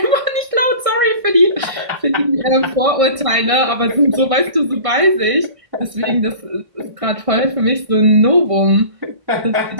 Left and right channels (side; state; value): left; late; 1.6 ms